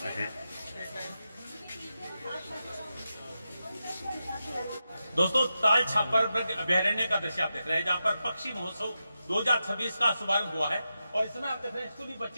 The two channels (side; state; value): both; inverted; correlation -0.89